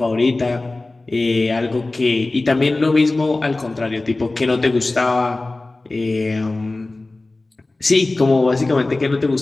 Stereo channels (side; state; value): right; quieter; 3.1 dB